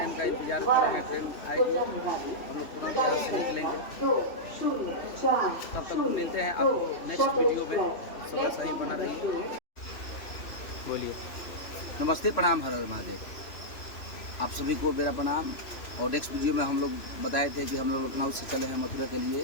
का इंतजार कर रहे हैं। ट्रेन आएगी, हम लोग तुरंत यहाँ से निकलेंगे। तब तक मिलते हैं आपको नेक्स्ट वीडियो में। सब ऐसा ही बना रहिए। बोलिए। नमस्ते, प्रणाम, हर हर महादेव। आप सभी को मेरा प्रणाम। और नेक्स्ट वीडियो में हम लोग बताए थे कि हम लोग लखनऊ से चले हैं मथुरा के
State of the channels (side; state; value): right; late; 3.0 ms